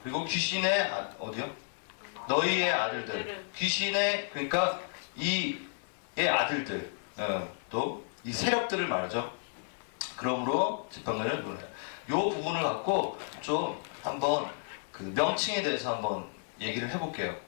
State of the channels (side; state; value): right; silent; digital silence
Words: 그리고 귀신의 어디요? 너희의 아들들. 귀신의 그러니까 이의 아들들. 또 이 세력들을 말하죠. 그러므로 재판관을 불러요. 요 부분을 갖고 좀 한번 그 명칭에 대해서 한번 얘기를 해볼게요.